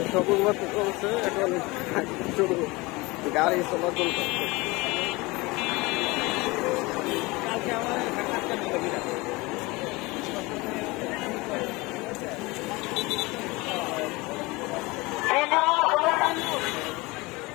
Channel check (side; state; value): right; quieter; 23.4 dB